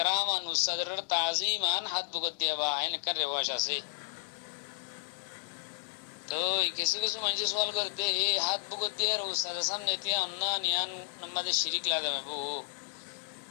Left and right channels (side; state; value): right; silent; digital silence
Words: আন উস্তাদের তাজিমান হাত বুগত দিয়ে বা এনেকার রেওয়াজ আছে। তো কিছু কিছু মানুষ সওয়াল করতে এই হাত বুগত দিয়ে উস্তাদের সামনে তিয়া অন্য নিয়ান আমাদের শিরিক লাগাবে বউ